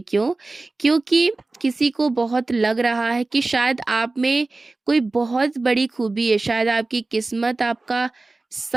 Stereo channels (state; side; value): quieter; left; 3.3 dB